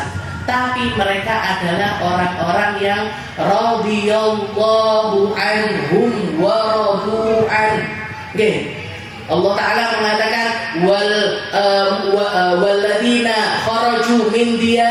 Tapi mereka adalah orang-orang yang radhiyallahu anhum wa radu an. Allah Ta'ala mengatakan walladzina kharaju min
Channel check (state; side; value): identical; both; correlation 1.00